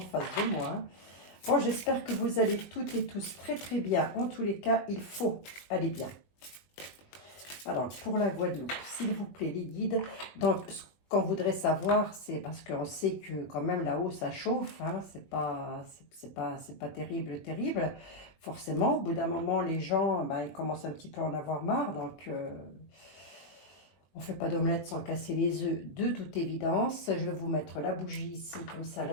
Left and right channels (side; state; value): right; late; 20 ms